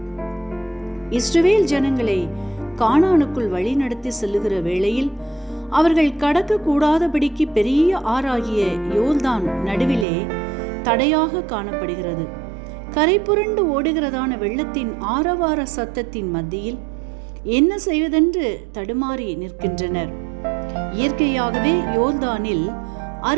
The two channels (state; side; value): drops out; left; at 10.1 s